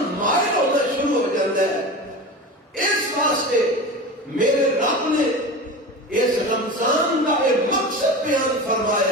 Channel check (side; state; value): both; normal; correlation 0.30